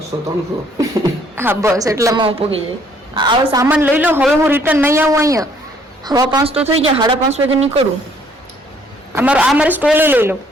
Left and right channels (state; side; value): normal; both; correlation 0.63